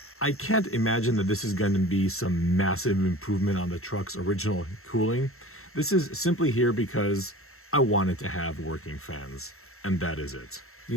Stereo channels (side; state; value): right; late; 0.62 ms